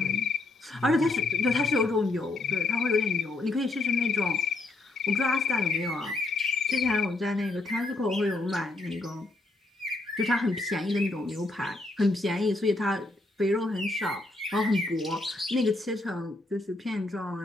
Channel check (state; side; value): quieter; right; 3.0 dB